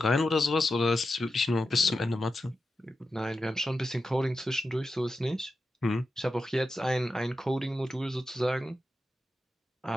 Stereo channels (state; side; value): normal; both; correlation 0.90